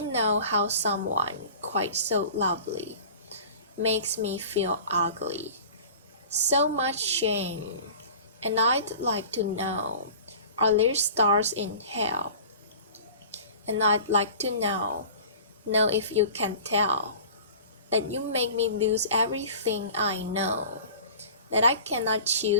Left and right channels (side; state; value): both; inverted; correlation -0.41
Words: know how someone quite so lovely makes me feel ugly. So much shame. And I'd like to know, are there stars in hell? And I'd like to know if you can tell that you make me lose everything I know, that I cannot